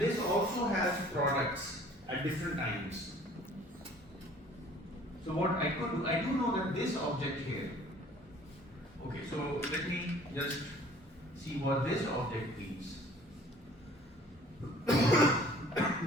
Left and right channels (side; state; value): both; normal; correlation 0.52